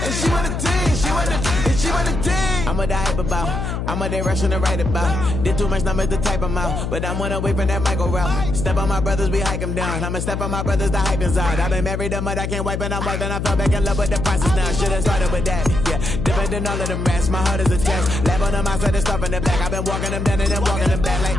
And she want a team. She want a team. I'm a die about. I'm a direction to write about. Did too much numbers to type them out. But I'm one away from that Michael route. Step on my brothers, we hike them down. I'ma step on my brothers, the hype inside. I've been married them, but I can't wipe it out more than I fell back in love with the process now. Should've started with that. Yeah, different than all of them rats. My heart is a test. Lab on them outside and stuff in the back. I've been walking them down and then walking them back like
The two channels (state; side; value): noise; left; hum, 3 dB below the sound